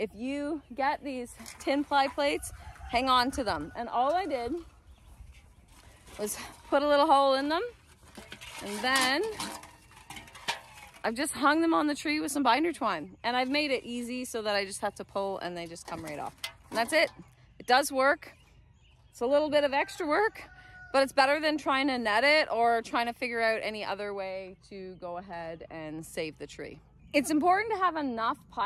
you get these tin pie plates, hang on to them. And all I did was put a little hole in them, and then I've just hung them on the tree with some binder twine, and I've made it easy so that I just have to pull and they just come right off. And that's it. It does work. It's a little bit of extra work, but it's better than trying to net it or trying to figure out any other way to go ahead and save the tree. It's important to have enough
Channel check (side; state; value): both; identical; correlation 1.00